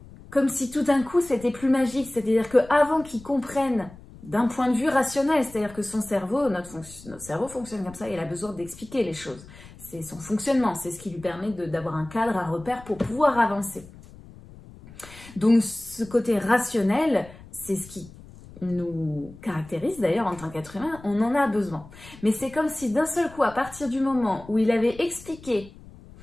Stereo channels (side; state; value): left; noise; rumble, 19 dB below the sound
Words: Comme si tout d'un coup c'était plus magique, c'est-à-dire qu'avant qu'il comprenne d'un point de vue rationnel, c'est-à-dire que son cerveau, notre cerveau fonctionne comme ça, il a besoin d'expliquer les choses. C'est son fonctionnement, c'est ce qui lui permet d'avoir un cadre, un repère pour pouvoir avancer. Donc ce côté rationnel, c'est ce qui nous caractérise d'ailleurs en tant qu'être humain, on en a besoin. Mais c'est comme si d'un seul coup, à partir du moment où il avait expliqué